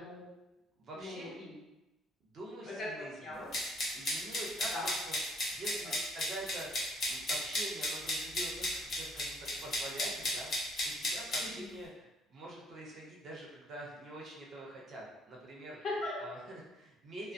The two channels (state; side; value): normal; both; correlation 0.64